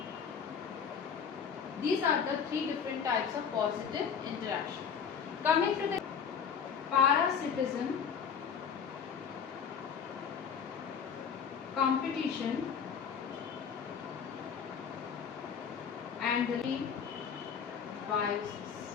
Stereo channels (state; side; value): quieter; right; 7.0 dB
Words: These are the three different types of positive interaction. Coming to the parasitism, competition, and the